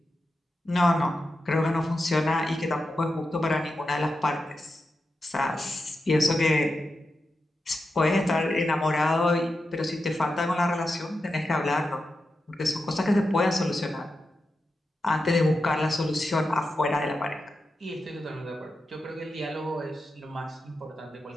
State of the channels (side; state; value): both; normal; correlation 0.89